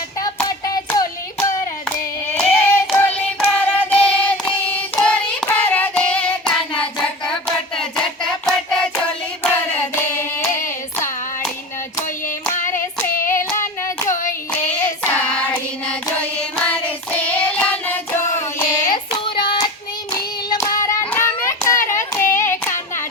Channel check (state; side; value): normal; both; correlation 0.32